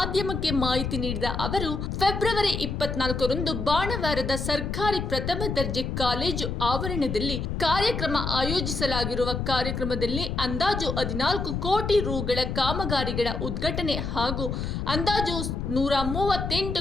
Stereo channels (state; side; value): noise; left; rumble, 3 dB below the sound